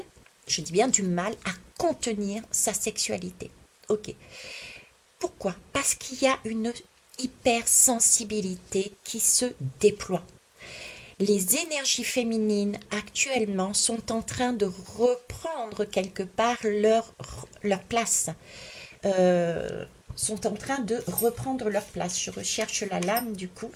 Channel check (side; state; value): both; identical; correlation 1.00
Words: je dis bien du mal, à contenir sa sexualité. Ok. Pourquoi? Parce qu'il y a une hypersensibilité qui se déploie. Les énergies féminines actuellement sont en train de reprendre quelque part leur place. Sont en train de reprendre leur place. Je recherche la lame du coup.